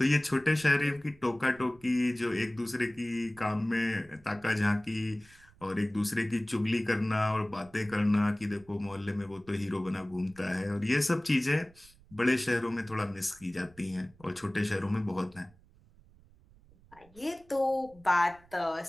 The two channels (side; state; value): right; noise; rumble, 26 dB below the sound